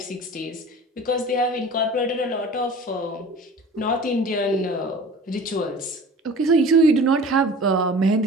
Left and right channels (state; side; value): normal; both; correlation 0.42